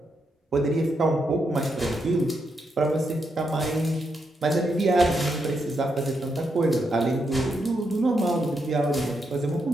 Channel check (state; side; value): normal; both; correlation 0.81